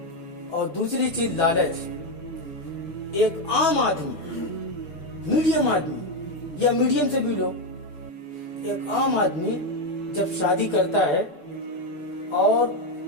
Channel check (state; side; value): late; right; 6.8 ms